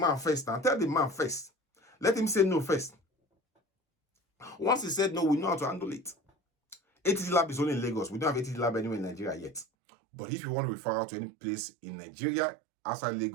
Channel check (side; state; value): left; drops out; at 9.7 s